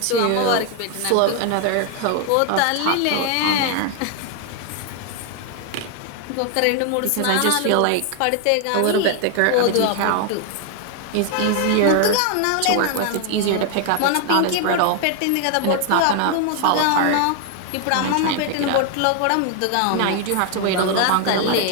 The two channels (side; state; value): both; different; correlation 0.00